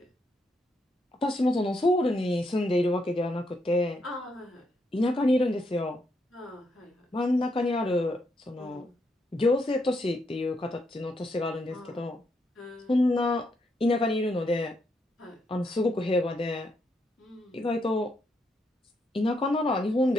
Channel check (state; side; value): normal; both; correlation 0.78